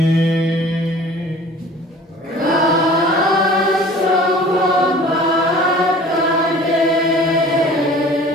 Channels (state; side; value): normal; both; correlation 0.46